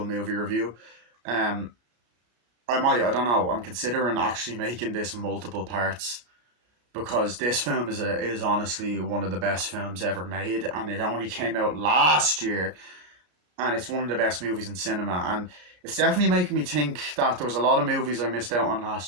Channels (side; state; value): left; late; 33 ms